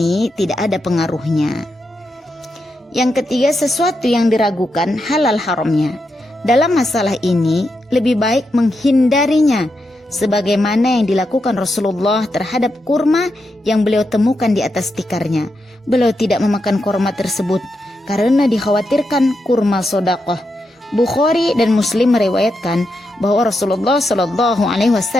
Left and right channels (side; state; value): both; normal; correlation 0.85